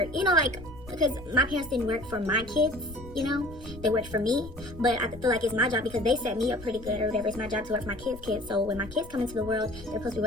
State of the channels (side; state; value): left; noise; rumble, 16 dB below the sound